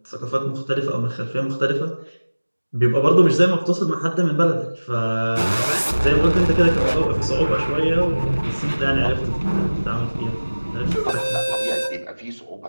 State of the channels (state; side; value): inverted; both; correlation -1.00